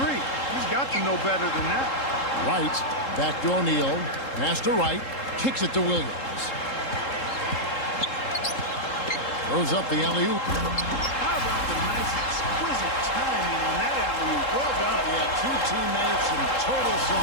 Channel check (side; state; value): right; late; 3.7 ms